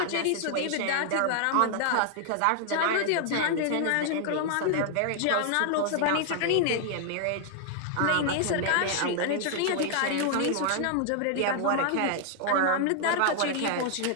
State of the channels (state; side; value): different; both; correlation 0.00